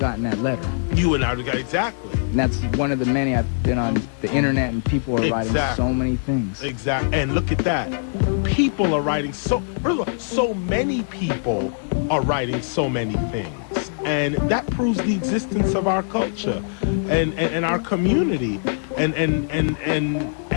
that letter. You would not have got exactly. And that's one of the many I've been on the internet, and people are writing so many things. Exactly. And look at that. People are writing so many people are writing so many things. And that proves the existence of our culture and our community.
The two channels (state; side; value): silent; right; 64 dB below the other